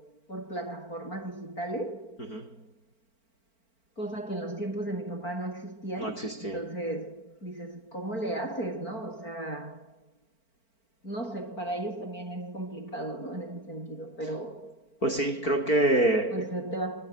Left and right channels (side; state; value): right; late; 4.4 ms